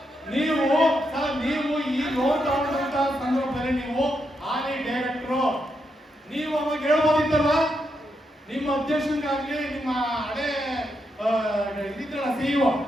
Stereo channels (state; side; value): normal; both; correlation 0.82